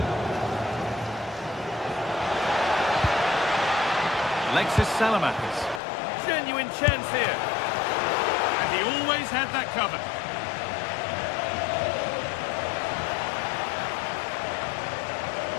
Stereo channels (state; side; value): drops out; right; at 5.8 s